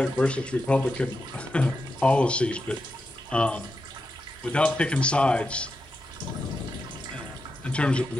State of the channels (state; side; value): normal; both; correlation 0.87